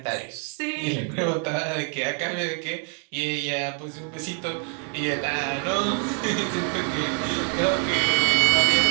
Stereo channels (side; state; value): left; quieter; 33.9 dB